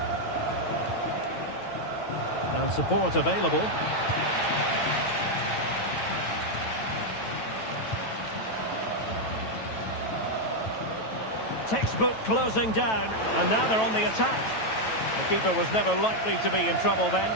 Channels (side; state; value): right; late; 9.1 ms